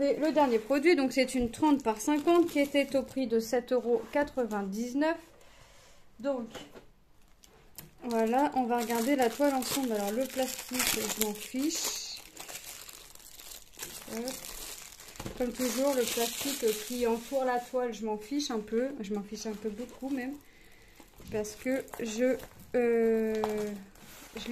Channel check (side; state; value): both; identical; correlation 1.00